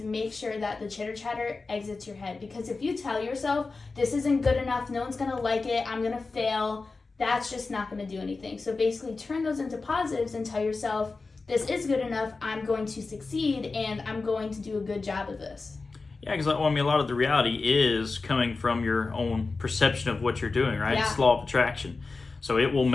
make sure that the chitter chatter exits your head. Because if you tell yourself, this isn't good enough, no one's gonna like it, I'm gonna fail, that's just not gonna do anything. So basically turn those into positives and tell yourself, this is good enough, I'm going to succeed, and I'm going to do a good job of this. Yeah, because a lot of the reality is coming from your own perception of what you're doing, right? Yeah. It's law of attraction. So it will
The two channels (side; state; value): right; quieter; 3.9 dB